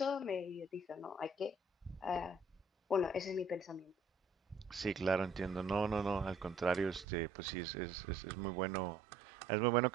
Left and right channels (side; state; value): left; drops out; at 7.1 s